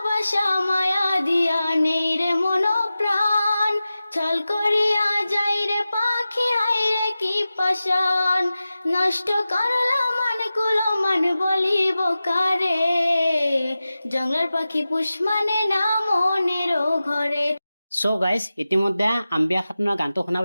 মায়া দিয়া নেই রে মন প্রাণ, ছল করিয়া যাই রে পাখি হাই রে কি পাশান। নষ্ট করলা মান কুলো মান বলিব কারে, জঙ্গলার পাখি পুষ মানে না মনের ঘরে। সো গাইজ, ইতিমধ্যে আম্বিয়া খাতুনৰ গানটো শুনা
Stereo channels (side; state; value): both; inverted; correlation -0.95